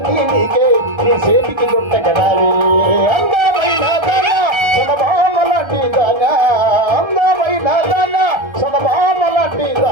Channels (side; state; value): left; late; 1.3 ms